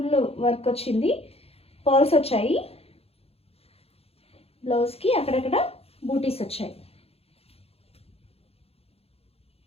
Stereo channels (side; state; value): right; late; 0.29 ms